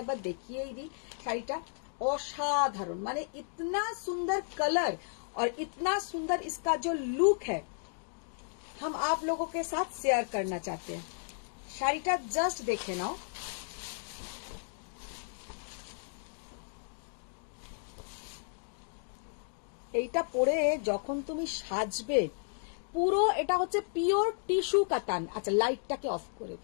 बार देखिए ही दी। শাড়িটা असाधारण, माने इतना सुंदर कलर और इतना सुंदर इसका जो लुक है, हम आप लोगों के साथ शेयर करना चाहते हैं। শাড়িটা जस्ट देखे नाओ। এইটা পরে যখন তুমি সাজবে, পুরো এটা হচ্ছে পিওর টিস্যু কাতান। আচ্ছা, লাইটটাকে অফ করে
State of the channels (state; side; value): silent; right; digital silence